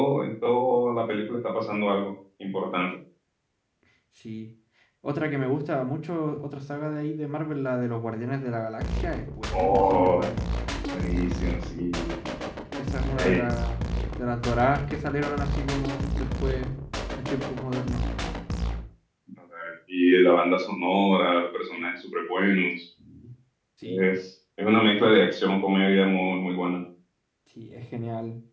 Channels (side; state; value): both; identical; correlation 1.00